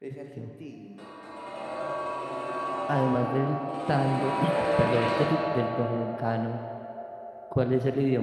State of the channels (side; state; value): both; identical; correlation 1.00